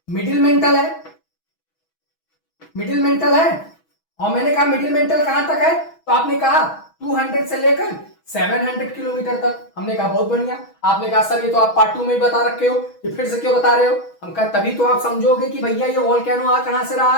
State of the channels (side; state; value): right; late; 6.2 ms